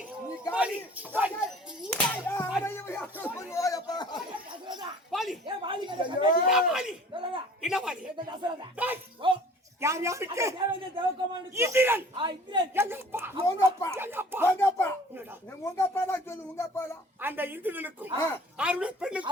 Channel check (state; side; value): normal; both; correlation 0.49